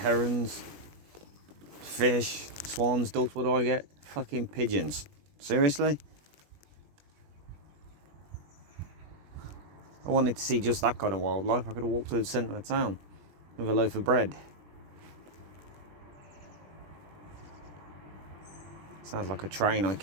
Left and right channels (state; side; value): late; left; 21 ms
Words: fish, swans, ducks, what do I get? Fucking pigeons. Seriously? I wanted to see just that kind of wildlife. I could have walked to the centre of town with a loaf of bread. Sounds like a train I